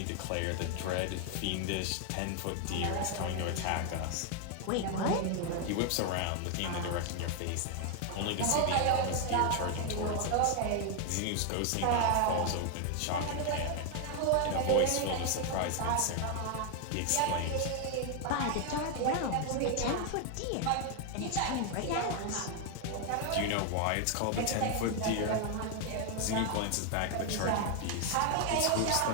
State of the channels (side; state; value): both; different; correlation 0.00